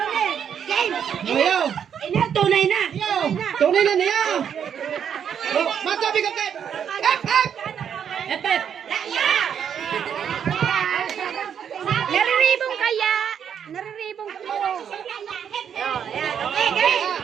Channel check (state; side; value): quieter; left; 8.2 dB